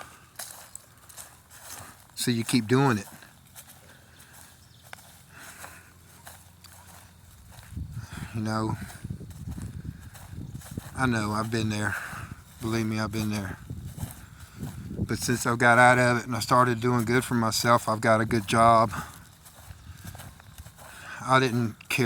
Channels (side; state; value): both; identical; correlation 1.00